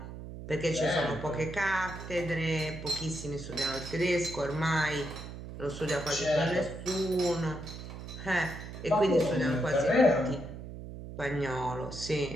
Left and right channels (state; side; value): noise; right; hum, 11 dB below the sound